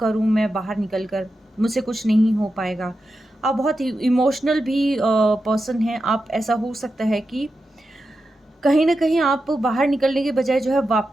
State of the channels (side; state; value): both; normal; correlation 0.90